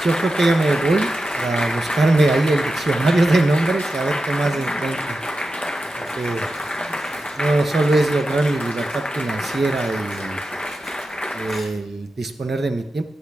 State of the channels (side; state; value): both; normal; correlation 0.91